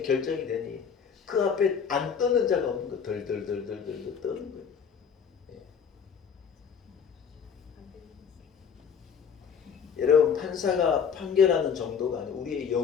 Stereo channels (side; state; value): right; quieter; 6.9 dB